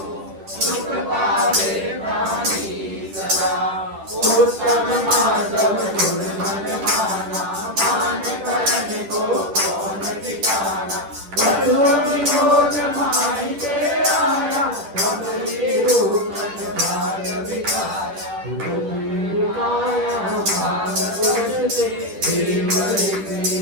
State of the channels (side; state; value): left; late; 10 ms